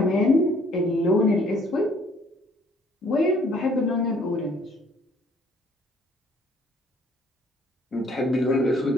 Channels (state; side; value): normal; both; correlation 0.60